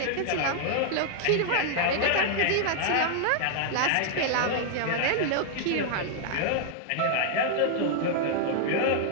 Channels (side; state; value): both; different; correlation -0.01